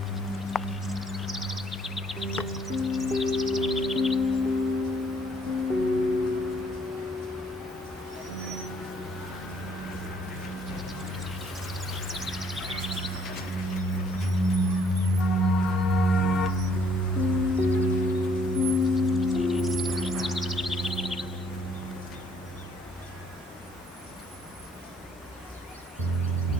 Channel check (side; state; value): both; normal; correlation 0.64